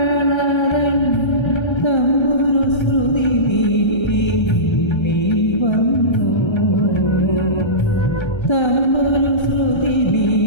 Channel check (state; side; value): late; right; 1.3 ms